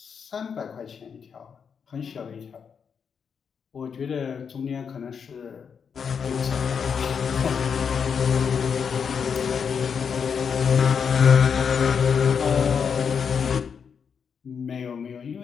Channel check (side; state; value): right; quieter; 6.6 dB